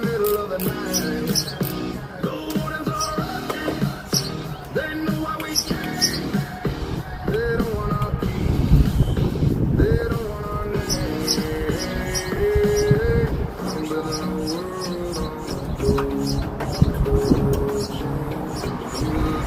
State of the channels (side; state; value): both; identical; correlation 1.00